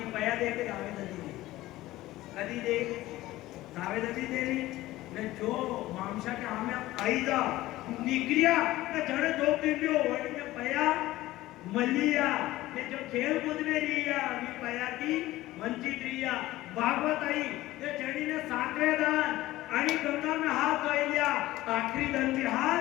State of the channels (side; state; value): right; quieter; 16.8 dB